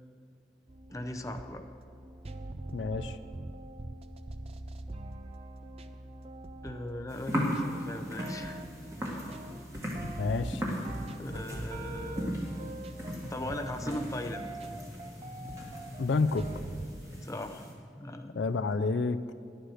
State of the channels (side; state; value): both; normal; correlation 0.68